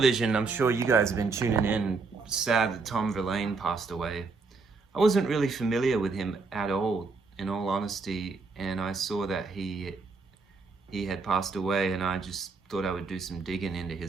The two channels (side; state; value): left; quieter; 4.3 dB